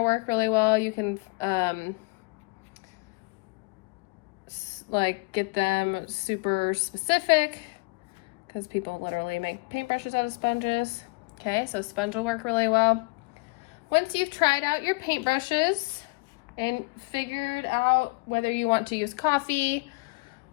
work really well. You can like get them super specific because people literally make paintbrushes out of sponges. Okay, so sponge will work really well. Once you've tried out your paintbrushes and figured out whether you want to use coffee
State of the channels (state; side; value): quieter; right; 29.6 dB